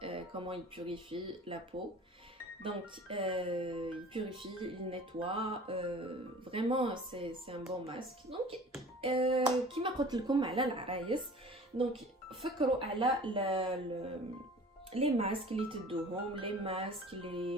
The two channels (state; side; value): normal; both; correlation 0.44